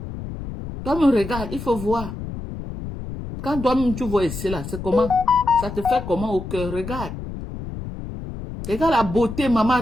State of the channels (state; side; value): noise; left; rumble, 9 dB below the sound